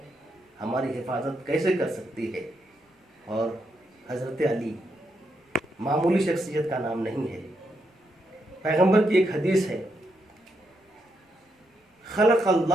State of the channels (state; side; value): normal; both; correlation 0.80